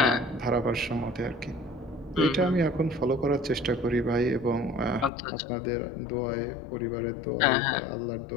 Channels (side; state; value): right; drops out; at 5.1 s